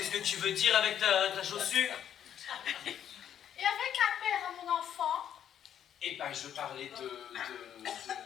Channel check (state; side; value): quieter; right; 9.7 dB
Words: que tu veux dire avec ta chaussure? Et avec un père à mon enfant? Eh ben, je parlais